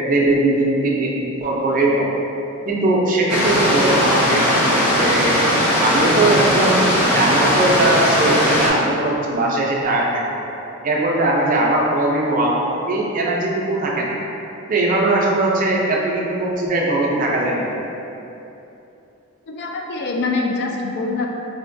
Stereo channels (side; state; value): both; normal; correlation 0.19